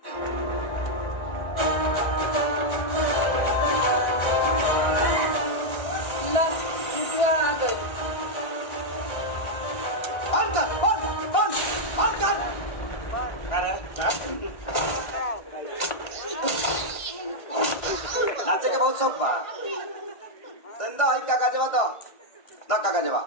आ गई। बंद कर, बंद कर। नाचे के बहुत शौक बा। धंधा है काका जवा तो ना काका जवा।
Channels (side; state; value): right; late; 1.6 ms